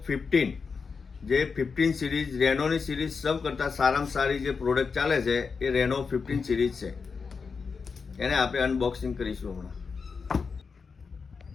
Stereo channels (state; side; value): quieter; right; 5.2 dB